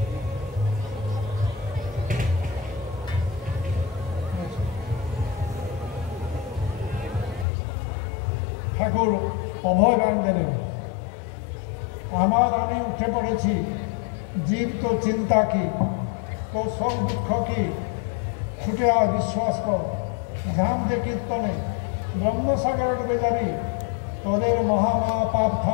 ঠাকুর অভয় বাণ দিলেন আমার আনে উঠে পড়েছি জীব তো চিন্তা কি তো সব দুঃখ কি ছুটে আয় বিশ্বাস কর ধাম যে কীর্তনে ব্রহ্মসাগরে ডুবে যাবি তোদের মহামহা পাপ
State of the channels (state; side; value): drops out; right; at 7.5 s